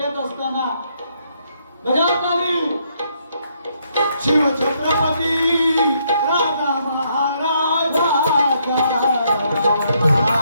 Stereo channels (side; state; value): both; inverted; correlation -0.73